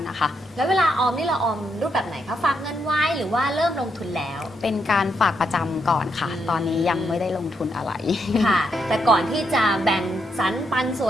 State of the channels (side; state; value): both; normal; correlation 0.79